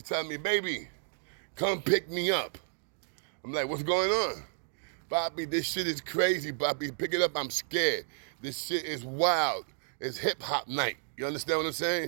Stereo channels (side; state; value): left; silent; digital silence